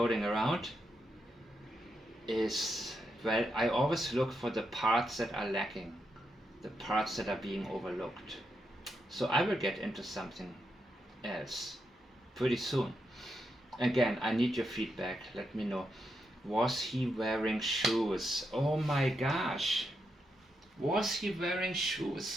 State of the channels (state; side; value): normal; both; correlation 0.83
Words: around is, well, I always look for the parts that are lacking, the parts that are being overlooked. So I will get into something else pretty soon. Again, I need your feedback. Let me know. Was he wearing shoes? Oh my gosh. Was he wearing